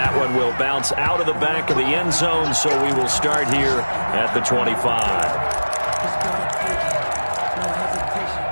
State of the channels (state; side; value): inverted; both; correlation -1.00